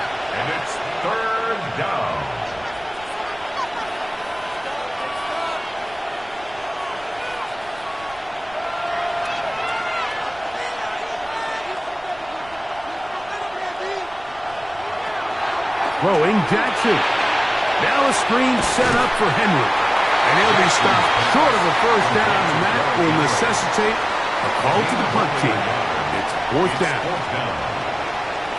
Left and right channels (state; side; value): noise; right; rumble, 23 dB below the sound